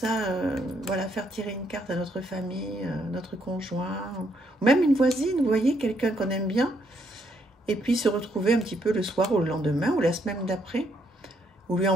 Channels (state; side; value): normal; both; correlation 0.73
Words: voilà, faire tirer une carte à notre famille, notre conjoint, ou même une voisine, vous voyez, quelqu'un qu'on aime bien, et puis se retrouver un petit peu le soir ou le lendemain ou la semaine d'après, ou lui